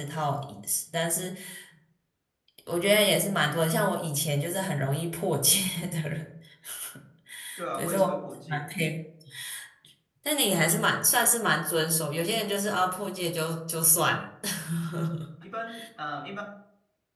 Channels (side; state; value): both; identical; correlation 1.00